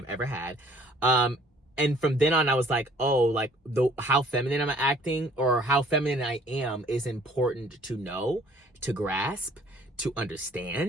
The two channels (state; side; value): normal; both; correlation 0.57